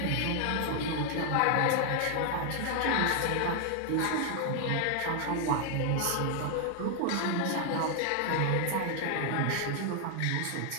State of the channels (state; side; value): different; both; correlation 0.00